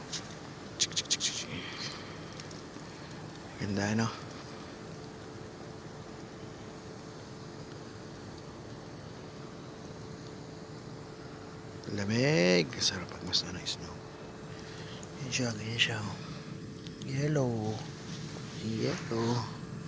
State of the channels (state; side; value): identical; both; correlation 1.00